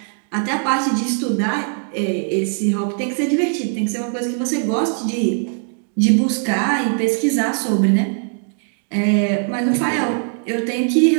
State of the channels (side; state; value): left; silent; 56 dB below the other